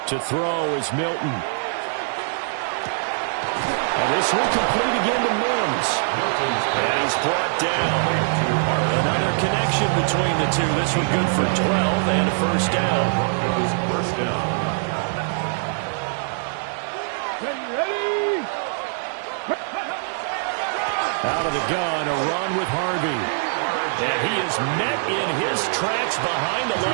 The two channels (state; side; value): silent; left; digital silence